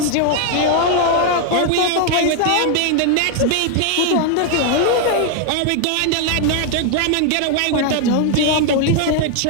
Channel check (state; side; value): different; both; correlation 0.00